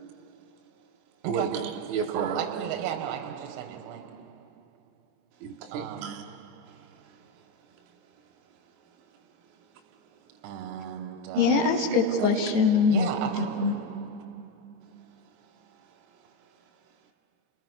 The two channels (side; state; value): left; late; 24 ms